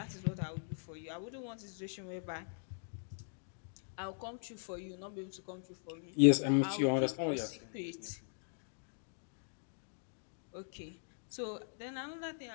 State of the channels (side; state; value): right; silent; digital silence